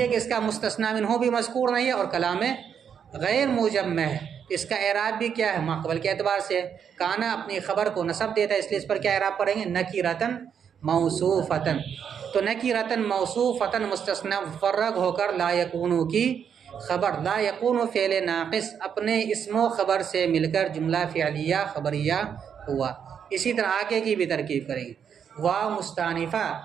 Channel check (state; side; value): quieter; left; 7.7 dB